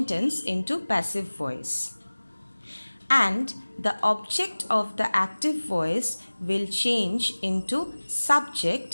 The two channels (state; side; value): inverted; both; correlation -1.00